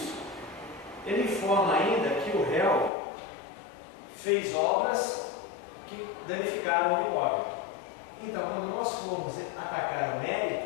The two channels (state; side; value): drops out; right; at 2.9 s